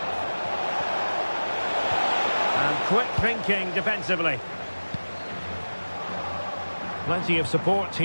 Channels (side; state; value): both; inverted; correlation -1.00